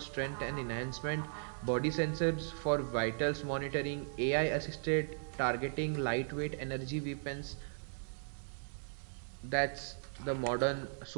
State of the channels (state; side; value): silent; left; digital silence